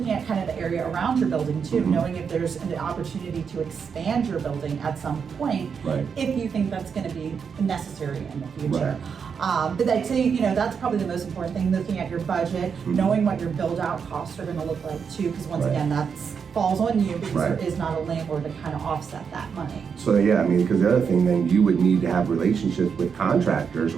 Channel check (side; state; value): left; quieter; 6.4 dB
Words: at kind of the area around your building too, Mhm. knowing if there's an opportunity to expand your building at some point, Right. if you think that's going to be necessary in the future. But I'd say, that's probably the most important thing, looking at your budget, knowing what your build out costs are going to look like too, because once Right. again, that falls on you because Right. there is not a landlord to kind of offset that money. So yeah, I mean, because the other thing, then you would need to have relationships with contractors,